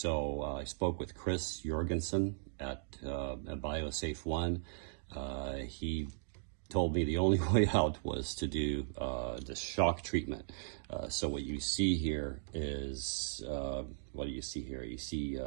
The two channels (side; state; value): left; silent; digital silence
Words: I spoke with Kris at BioSafe 1. He told me the only way out was to do the shock treatment. So what you see here is, what do you see here? You see